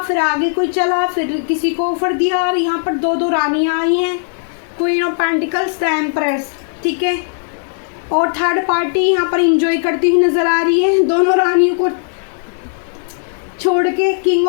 आगे कोई चला, फिर किसी को ऑफर दिया, और यहाँ पर दो रानियाँ आई हैं, queen of pentacles, the empress, ठीक है। और थर्ड पार्टी यहाँ पर इंजॉय करती हुई नज़र आ रही है, दोनों रानियों को छोड़ के। किंग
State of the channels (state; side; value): silent; right; 65 dB below the other